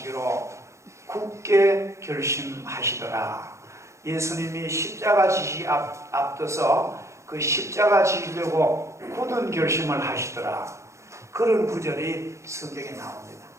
굳게 결심하시더라. 예수님이 십자가 지시 앞둬서 그 십자가 지시려고 굳은 결심을 하시더라. 그런 구절이 성경에 나옵니다.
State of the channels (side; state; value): left; late; 0.14 ms